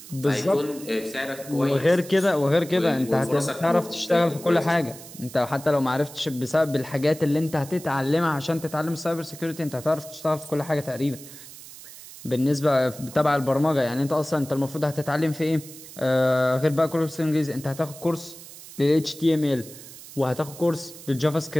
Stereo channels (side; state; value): right; noise; hiss, 16 dB below the sound